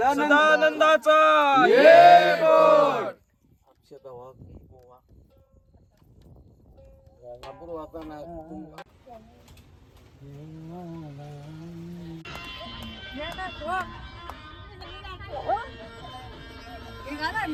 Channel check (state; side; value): identical; both; correlation 1.00